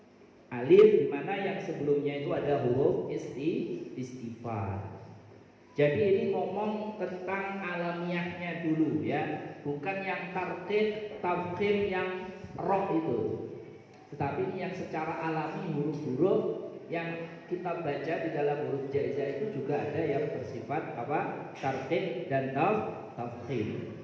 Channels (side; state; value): both; identical; correlation 1.00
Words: Alif dimana yang sebelumnya itu ada huruf istifal. Jadi ini ngomong tentang alamiahnya dulu ya, bukan yang tarqiq tafkhim yang roh itu, tetapi ini yang secara alami huruf-huruf yang kita baca di dalam huruf jaizah itu juga ada yang bersifat apa? Tarqiq dan tafkhim.